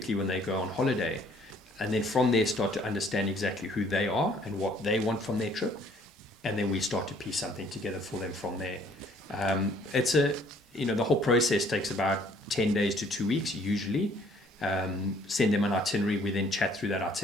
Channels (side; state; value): both; normal; correlation 0.60